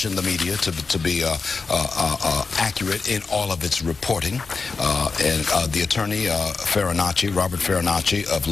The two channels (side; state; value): right; quieter; 4.5 dB